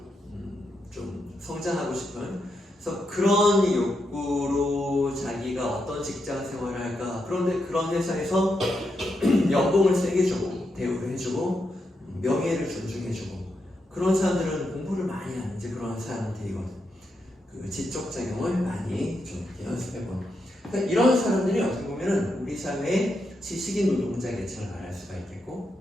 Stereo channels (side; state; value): both; normal; correlation 0.83